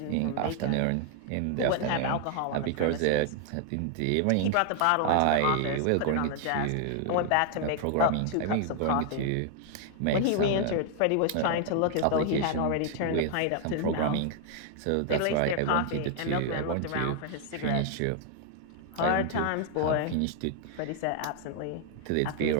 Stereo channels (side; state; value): both; different; correlation 0.00